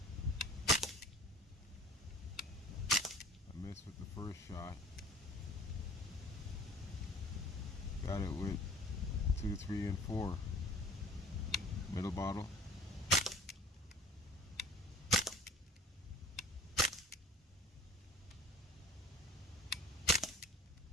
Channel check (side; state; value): both; normal; correlation 0.47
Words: I missed with the first shot. Got it with 2, 3, and 4. Middle bottle.